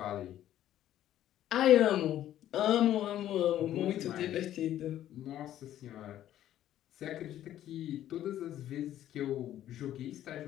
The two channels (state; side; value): quieter; right; 12.2 dB